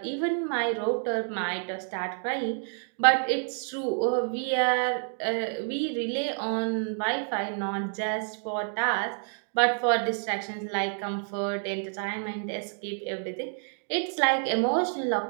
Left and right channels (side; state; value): left; silent; 59 dB below the other